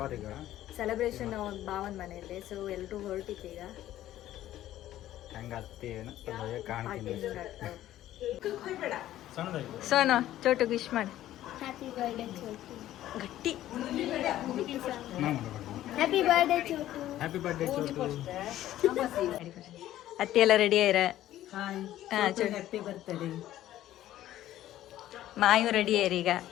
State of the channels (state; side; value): quieter; right; 13.5 dB